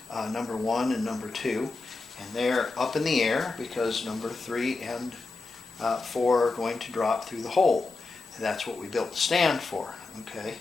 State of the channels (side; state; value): right; quieter; 3.7 dB